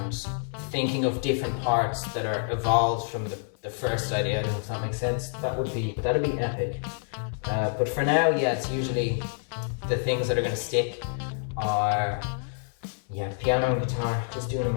thinking of different parts that are evolved from the first idea, I don't know if that makes sense. That'd be epic. But for now, yeah, it's usually the things that are gonna stick are piano and guitar, just doing a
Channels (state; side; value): silent; right; 60 dB below the other